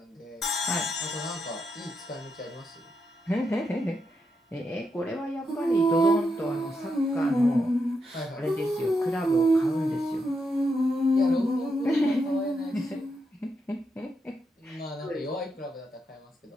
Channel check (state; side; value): normal; both; correlation 0.82